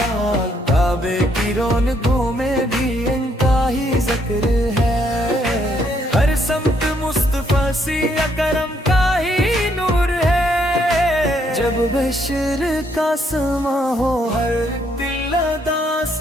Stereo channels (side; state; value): both; normal; correlation 0.71